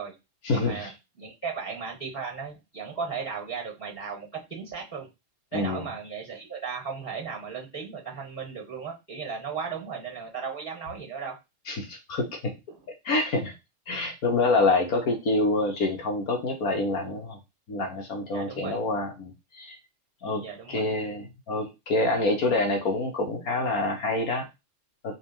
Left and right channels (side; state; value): right; late; 4.3 ms